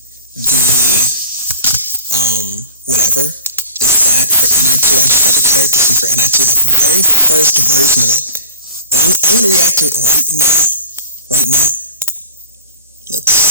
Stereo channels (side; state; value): both; inverted; correlation -0.43